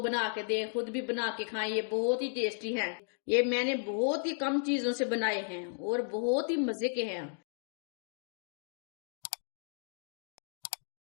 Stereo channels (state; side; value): silent; right; digital silence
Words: के दें, खुद भी बना के खाएं। ये बहुत ही टेस्टी हैं। ये मैंने बहुत ही कम चीजों से बनाए हैं और बहुत ही मजे के हैं।